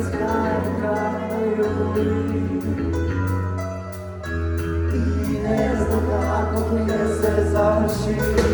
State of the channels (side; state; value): both; identical; correlation 1.00